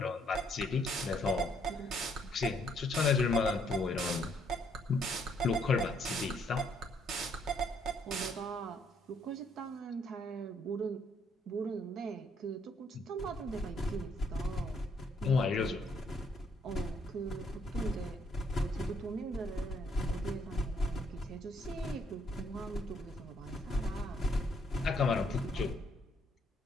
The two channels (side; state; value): both; normal; correlation 0.69